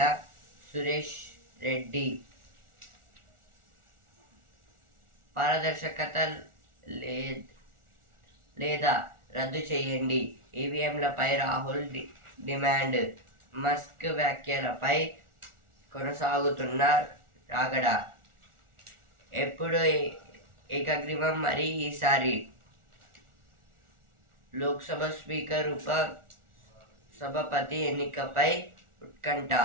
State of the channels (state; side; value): late; left; 1.4 ms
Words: సురేష్ రెడ్డి. పారదర్శకత లేదా రద్దు చేయండి. ఈవీఎంలపై రాహుల్ డిమాండ్. మస్క్ వ్యాఖ్యలపై కొనసాగుతున్న రాగడ. ఎప్పుడు ఏకగ్రీవం మరి ఈసారి. లోక్సభ స్పీకర్ ఉప సభాపతి ఎన్నికపై ఉత్కంఠ.